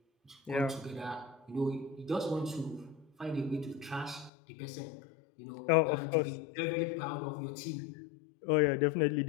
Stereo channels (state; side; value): drops out; right; at 4.3 s